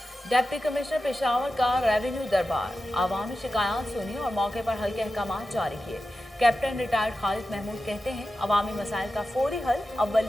डिप्टी कमिश्नर पेशावर का रेवेन्यू दरबार, आवामी शिकायत सुनी और मौके पर हल के अहकाम जारी किए। कैप्टन रिटायर्ड खालिद महमूद कहते हैं अवामी मसाइल का फौरी हल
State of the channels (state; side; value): normal; both; correlation 0.92